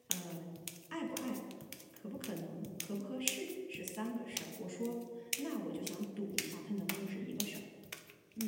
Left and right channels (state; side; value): identical; both; correlation 1.00